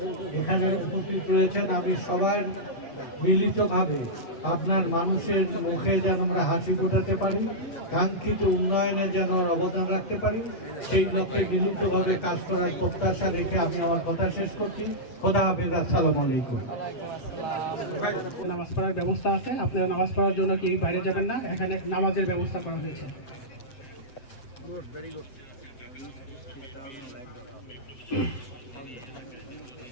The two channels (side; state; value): right; late; 7.9 ms